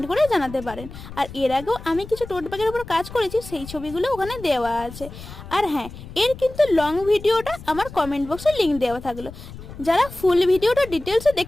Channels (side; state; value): left; noise; rumble, 14 dB below the sound